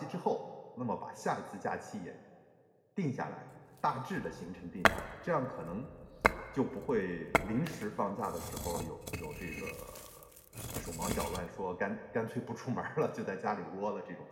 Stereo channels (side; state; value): both; identical; correlation 1.00